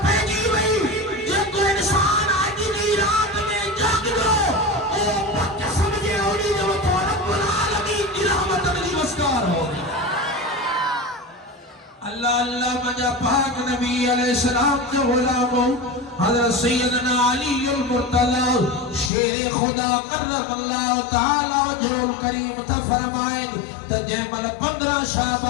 पइजी वई जेको इंसान अॼु जी रात में जागंदो ओ पक समझे उनी जो तो रब्बुल आलमीन जी रहमत जी वस्कार हो अल्लाह अल्लाह मजा पाक नबी अलैहि सलाम जो गुलामो हजरत सैयदना अली अल मुर्तजा शेर खुदा करम अल्लाह ताला वजहुल करीम था फरमाए त जंहिंमहिल 15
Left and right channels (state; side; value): drops out; right; at 19.1 s